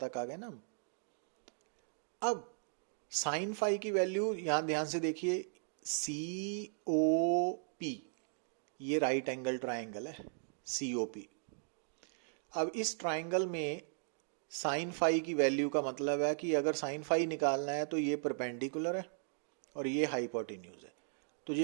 आ गए ना। अब साइन फाई की वैल्यू यहाँ ध्यान से देखिए, COP, ये राइट एंगल ट्राइंगल है COP। अब इस ट्राइंगल में साइन फाई की वैल्यू का मतलब है कि अगर साइन फाई निकालना है तो ये परपेंडिकुलर है और ये हाइपोटेन्यूज है। तो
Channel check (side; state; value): left; silent; digital silence